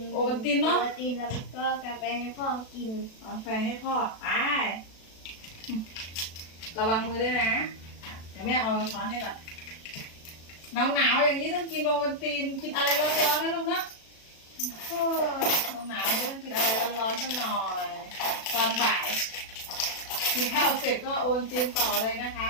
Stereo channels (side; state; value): right; late; 36 ms